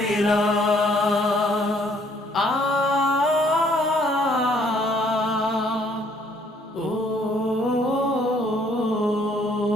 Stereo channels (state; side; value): normal; both; correlation 0.63